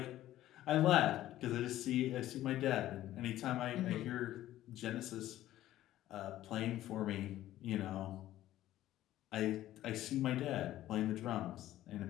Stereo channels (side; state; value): right; quieter; 14.0 dB